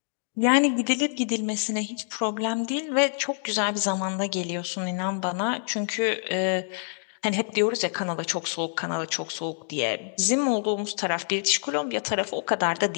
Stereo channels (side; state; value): right; silent; digital silence